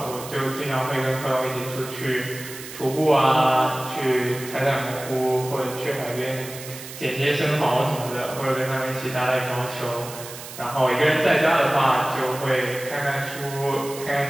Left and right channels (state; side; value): noise; right; hiss, 13 dB below the sound